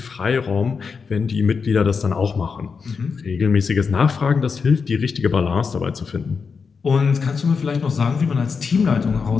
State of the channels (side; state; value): right; quieter; 5.4 dB